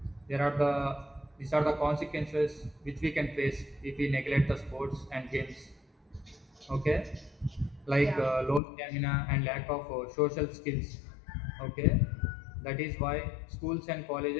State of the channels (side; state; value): right; drops out; at 8.6 s